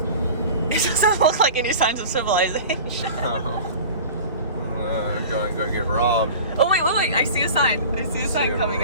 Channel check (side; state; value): both; inverted; correlation -0.37